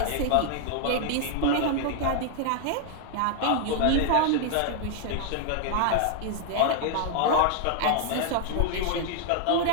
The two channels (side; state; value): both; different; correlation 0.00